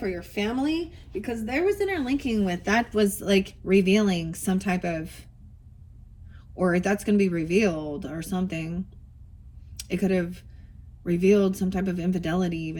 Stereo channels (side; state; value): both; identical; correlation 1.00